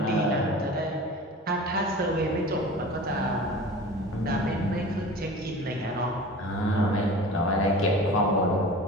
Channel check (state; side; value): normal; both; correlation 0.38